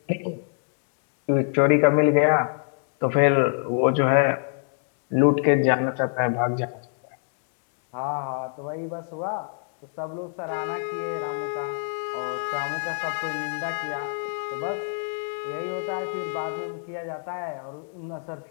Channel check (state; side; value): silent; right; digital silence